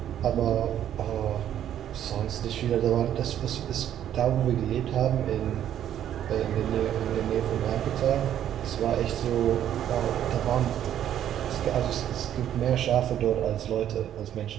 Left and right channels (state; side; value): quieter; left; 10.7 dB